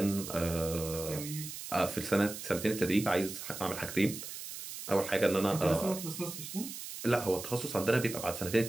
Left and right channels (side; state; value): right; noise; hiss, 9 dB below the sound